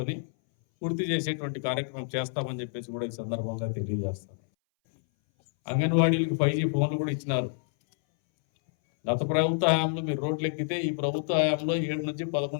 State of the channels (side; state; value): right; silent; 59 dB below the other